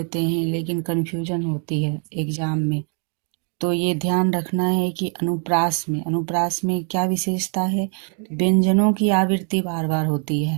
हैं लेकिन कन्फ्यूजन होती है एग्जाम में। तो ये ध्यान रखना है कि अनुप्रास में क्या विशेषता है। व्यंजनों की आवृत्ति बार बार होती है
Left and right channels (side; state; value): left; quieter; 36.9 dB